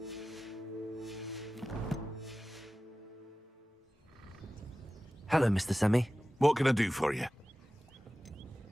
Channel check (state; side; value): normal; both; correlation 0.96